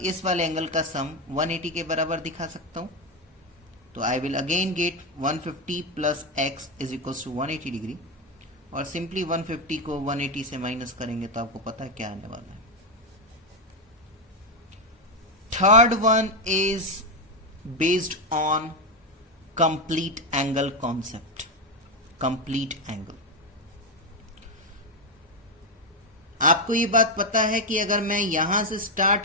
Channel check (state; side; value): normal; both; correlation 0.07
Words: वाले एंगल का सम 180 के बराबर दिखा सकता हूं। तो I will again get 150 plus x is equal to 180 degree. और सिंपली 150 को 180 से माइनस करेंगे तो आपको पता है क्या आने वाला है। Third one is based on complete angle concept. Complete angle, आपको ये बात पता है कि अगर मैं यहां से स्टार्ट